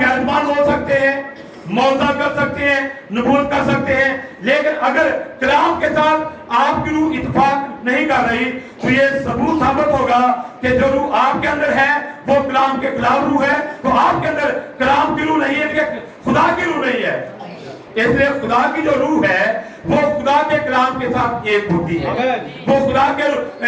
हो सकते हैं, मौजा कर सकते हैं, नबूवत कर सकते हैं, लेकिन अगर कलाम के साथ आपकी रूह इत्तेफाक नहीं कर रही तो ये सबूत साबित होगा कि जो रूह आपके अंदर है वो कलाम के खिलाफ रूह है। तो आपके अंदर कलाम की रूह नहीं है, खुदा की रूह नहीं है। इसलिए खुदा की जो रूह है वो खुदा के कलाम के साथ एक होती है, वो खुदा के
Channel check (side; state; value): both; identical; correlation 1.00